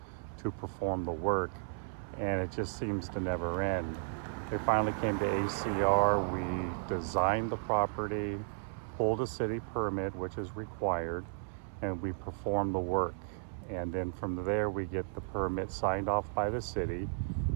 to perform the work, and it just seems to never end. We finally came to ACR, we designed the property, pulled a city permit, which is required, and we perform the work. And then from there, we get the permit signed off by the city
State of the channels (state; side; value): silent; left; 55 dB below the other